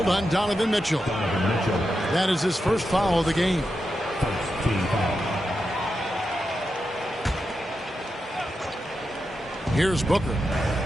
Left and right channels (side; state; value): both; normal; correlation 0.88